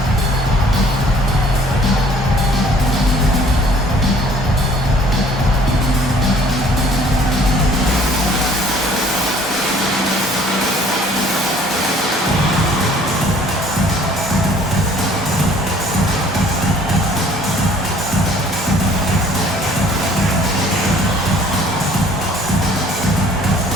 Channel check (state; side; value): normal; both; correlation 0.56